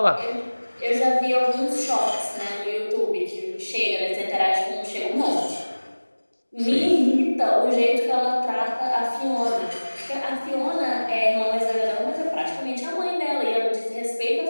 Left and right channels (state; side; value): inverted; both; correlation -1.00